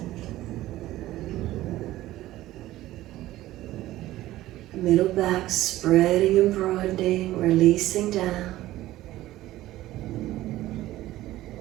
Middle back spreading and broadening, releasing down.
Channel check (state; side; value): quieter; left; 15.7 dB